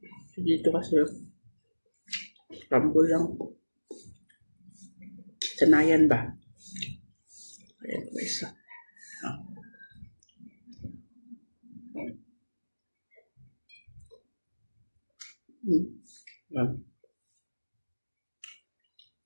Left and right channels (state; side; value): inverted; both; correlation -1.00